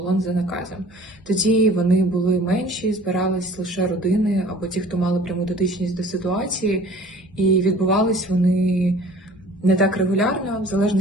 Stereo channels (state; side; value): normal; both; correlation 0.48